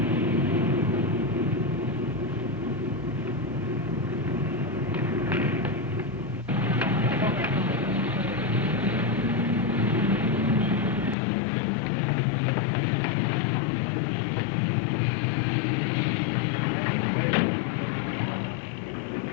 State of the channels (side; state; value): right; drops out; at 11.2 s